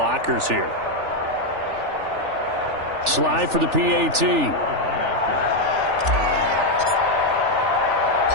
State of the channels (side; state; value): left; late; 3.4 ms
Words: here. Slide for the PAT.